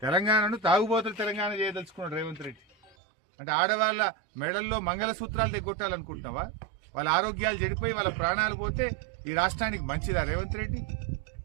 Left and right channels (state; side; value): drops out; left; at 3.0 s